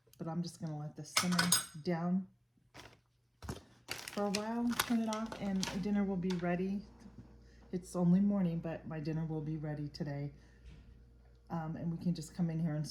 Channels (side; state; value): both; identical; correlation 1.00